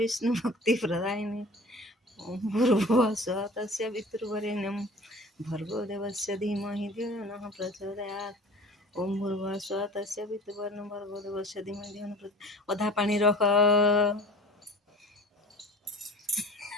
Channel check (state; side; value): normal; both; correlation 0.43